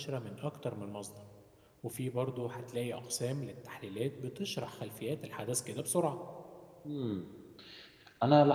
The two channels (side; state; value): both; identical; correlation 1.00